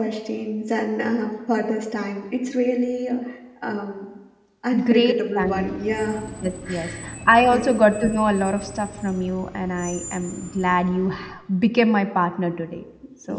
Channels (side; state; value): both; identical; correlation 1.00